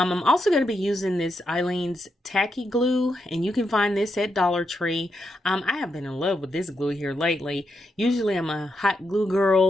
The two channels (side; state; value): both; normal; correlation 0.83